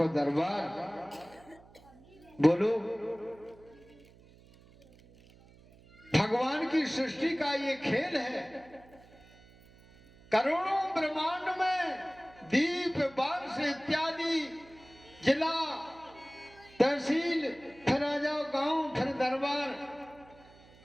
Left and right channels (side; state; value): right; noise; hum, 25 dB below the sound